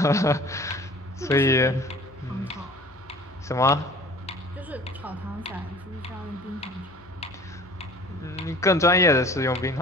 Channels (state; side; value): noise; left; hum, 26 dB below the sound